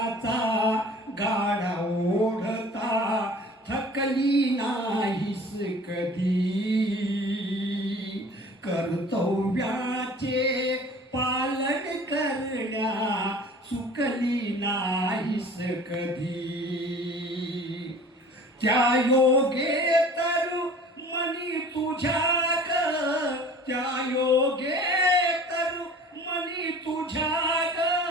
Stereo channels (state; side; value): normal; both; correlation 0.45